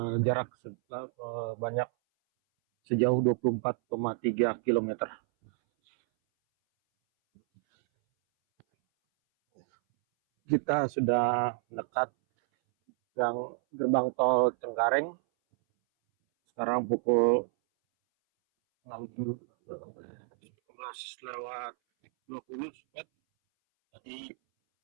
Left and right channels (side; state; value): left; silent; 58 dB below the other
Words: jarak banyak sejauh 24,3 km. Kita sudah dekat gerbang tol Cengkareng. Sekarang pukul 16:20. Jadi